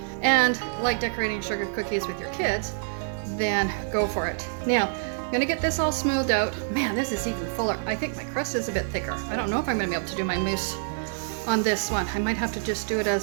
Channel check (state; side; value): silent; left; digital silence